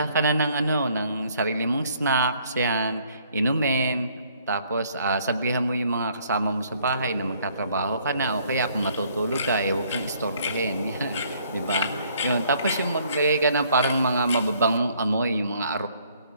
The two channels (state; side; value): inverted; both; correlation -0.64